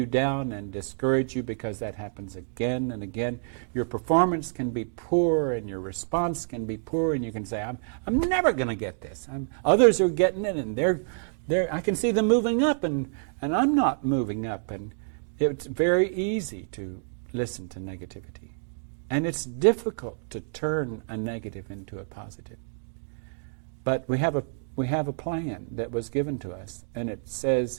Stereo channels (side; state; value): left; silent; digital silence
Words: down and discourage you, because that happens again and again. Your performance can be poor and your response can be poor, and you can say, I'm never going to get this. Others are getting it, and I can see them moving up, and I'm not moving up. And it's very easy to listen to negativity. And it's difficult to turn a negative into a positive. But we have a plan that was given to us, and it